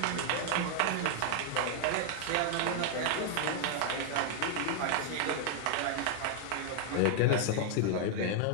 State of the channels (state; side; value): different; both; correlation 0.00